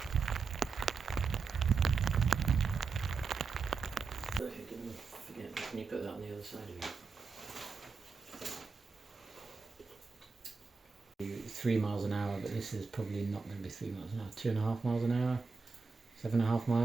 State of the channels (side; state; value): left; quieter; 4.8 dB